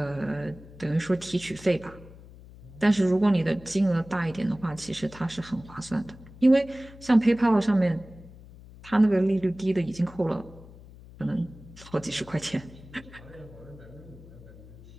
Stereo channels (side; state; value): left; noise; hum, 19 dB below the sound